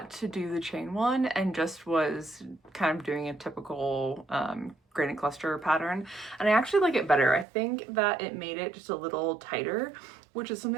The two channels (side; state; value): left; drops out; at 7.5 s